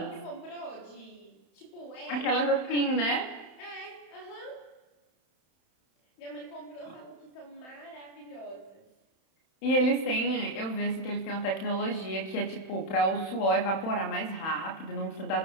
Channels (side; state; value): right; late; 31 ms